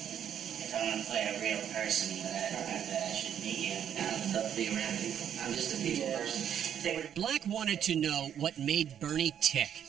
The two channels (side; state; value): left; quieter; 9.3 dB